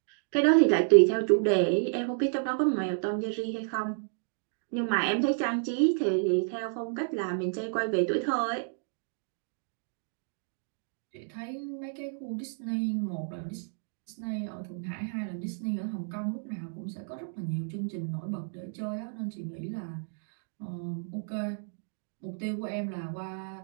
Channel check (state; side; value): silent; left; digital silence